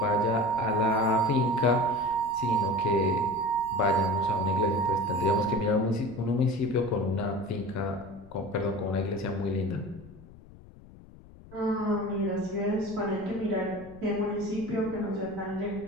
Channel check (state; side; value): noise; left; rumble, 20 dB below the sound